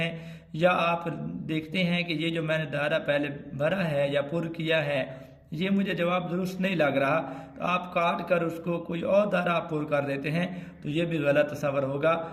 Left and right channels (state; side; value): identical; both; correlation 1.00